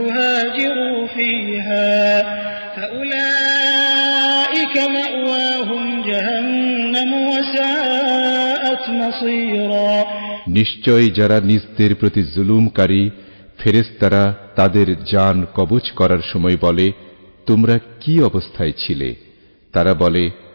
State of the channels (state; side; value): inverted; both; correlation -1.00